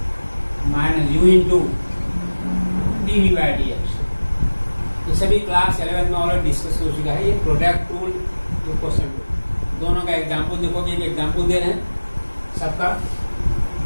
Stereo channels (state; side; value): inverted; both; correlation -1.00